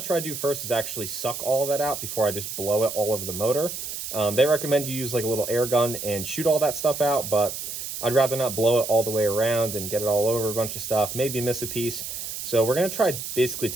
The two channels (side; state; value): right; noise; hiss, 7 dB below the sound